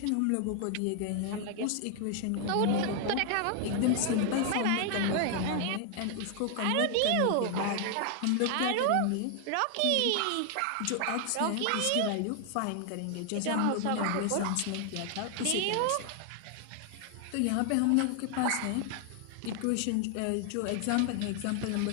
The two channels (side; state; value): both; different; correlation 0.00